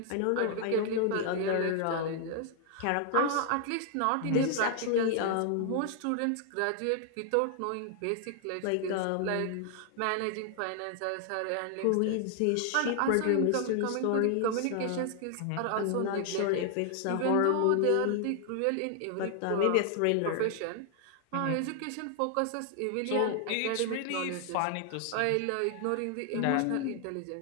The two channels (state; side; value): different; both; correlation 0.00